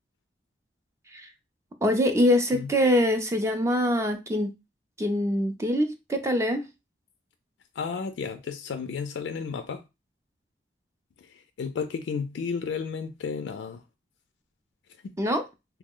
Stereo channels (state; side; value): normal; both; correlation 0.54